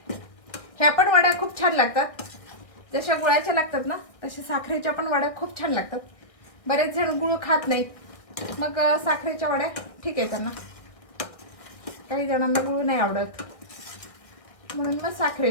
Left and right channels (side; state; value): right; late; 1.4 ms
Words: ह्या पण वड्या खूप छान लागतात. जशा गुळाच्या लागतात ना तशा साखरेच्या पण वड्या खूप छान लागतात. बरेच जण गुळ खात नाहीत, मग साखरेच्या वड्या ठीक आहे त्यांना. काही जणांना गुळ नाही आवडत म्हणून मग